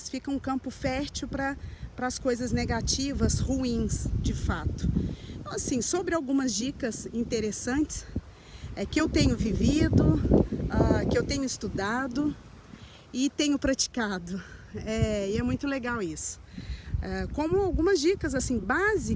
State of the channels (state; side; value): identical; both; correlation 1.00